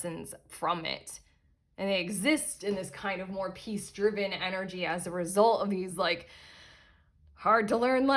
from it. And they exist in this kind of more peace-driven energy as a result of these like hard to learn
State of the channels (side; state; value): both; identical; correlation 1.00